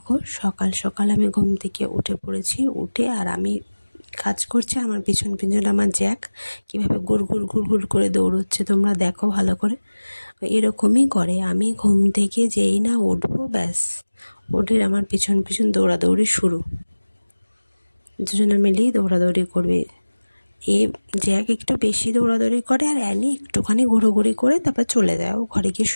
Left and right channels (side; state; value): both; inverted; correlation -1.00